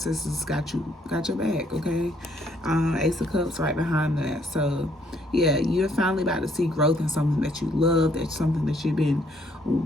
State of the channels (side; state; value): both; normal; correlation 0.68